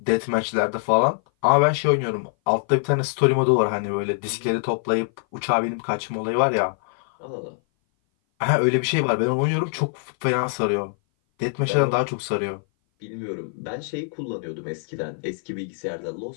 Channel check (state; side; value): silent; right; 57 dB below the other